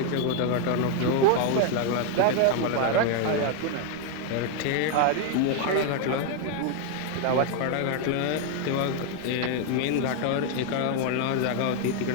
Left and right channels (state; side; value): different; both; correlation 0.01